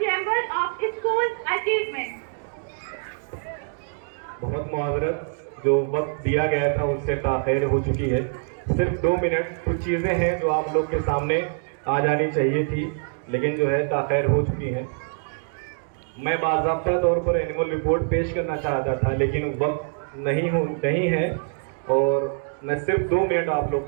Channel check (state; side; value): silent; left; digital silence